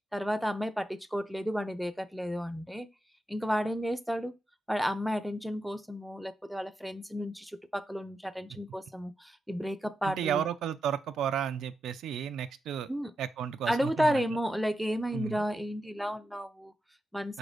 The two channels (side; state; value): both; normal; correlation 0.88